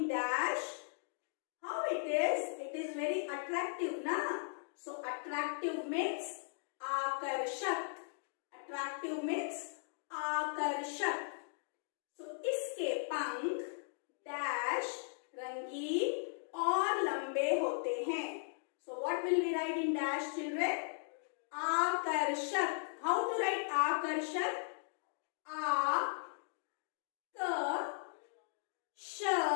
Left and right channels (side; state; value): right; silent; digital silence